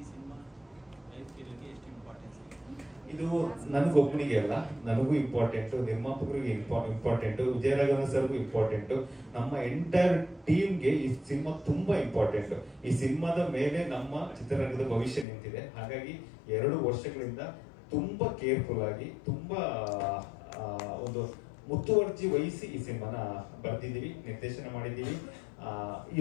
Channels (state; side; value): drops out; right; at 15.2 s